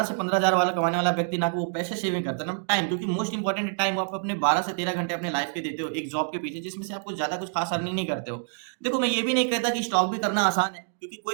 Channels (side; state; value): left; silent; 60 dB below the other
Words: से 15 हजार वाला कमाने वाला व्यक्ति ना कि वो पैसे सेविंग करता है ना टाइम, क्योंकि मोस्ट इंपॉर्टेंट टाइम आप अपने 12 से 13 घंटे अपने लाइफ के देते हो एक जॉब के पीछे, जिसमें से आपको ज्यादा कुछ खास अर्निंग नहीं करते हो। देखो मैं ये भी नहीं कहता कि स्टॉक भी करना आसान है, क्योंकि